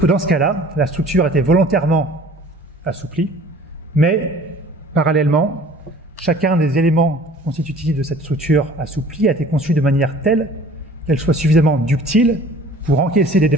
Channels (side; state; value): both; normal; correlation 0.49